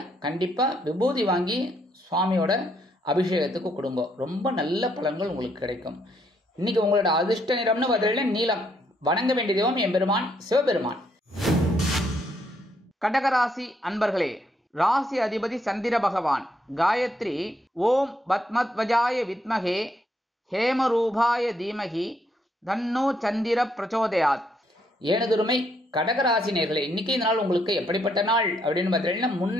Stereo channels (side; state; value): both; normal; correlation 0.73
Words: கண்டிப்பா விபூதி வாங்கி சுவாமியோட அபிஷேகத்துக்கு கொடுங்க. ரொம்ப நல்ல பலன்கள் உங்களுக்கு கிடைக்கும். இன்னைக்கு உங்களோட அதிர்ஷ்ட நிறம்னு பார்த்தீங்கன்னா நீலம். வணங்க வேண்டிய தெய்வம் எம்பெருமான் சிவபெருமான். கடகராசி அன்பர்களே, ராசி அதிபதி சந்திர பகவான். காயத்ரி ஓம் பத்மத்வஜாய வித்மகே ஹேமரூபாய தீமகி தன்னோ சந்திர பிரச்சோதயாத். எனதுரிமை கடகராசி நேயர்களே, இன்னைக்கு இந்த நாள் உங்களுக்கு எப்படிப்பட்ட நாள் அப்படின்னு பார்த்தீங்கன்னா